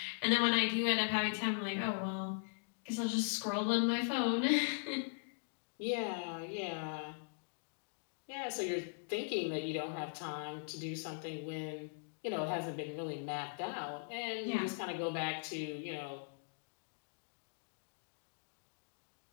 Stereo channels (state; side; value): silent; right; digital silence